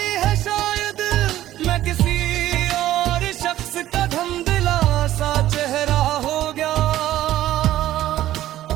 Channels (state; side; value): quieter; left; 13.8 dB